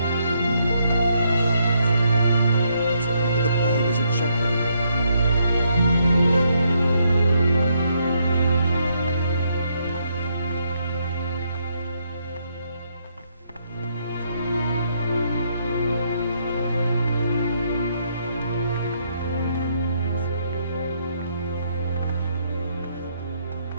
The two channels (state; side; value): inverted; both; correlation -0.74